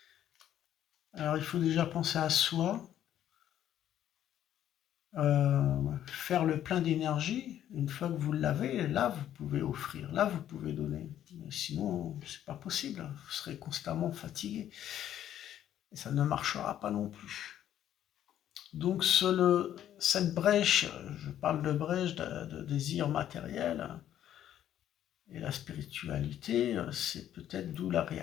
Alors il faut déjà penser à soi, faire le plein d'énergie. Une fois que vous l'avez, là vous pouvez offrir, là vous pouvez donner. Mais sinon, c'est pas possible, vous serez constamment fatigué. Et ça ne marchera pas non plus. Donc cette brèche, je parle de brèche de désir matériel et la spiritualité, c'est peut-être d'où la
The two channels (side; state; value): right; quieter; 11.1 dB